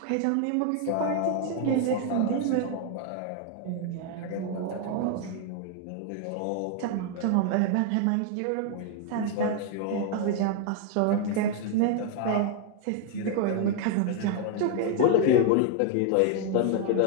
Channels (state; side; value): different; both; correlation 0.00